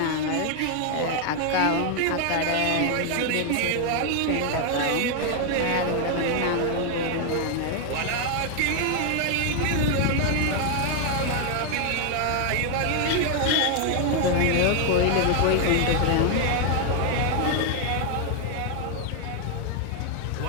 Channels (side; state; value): both; different; correlation 0.00